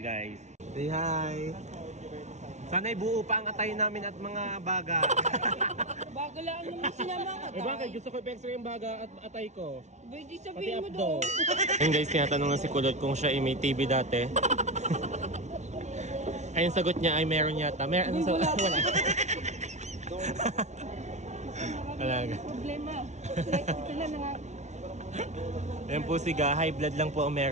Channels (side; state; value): left; late; 0.33 ms